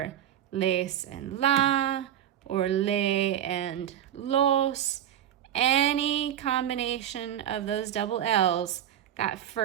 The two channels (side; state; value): left; quieter; 10.7 dB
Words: les and la, or le and los. Any combination of those double L's, that